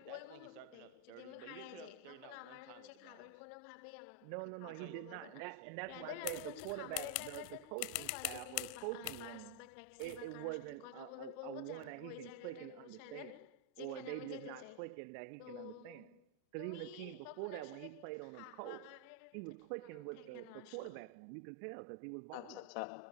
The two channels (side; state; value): both; different; correlation 0.00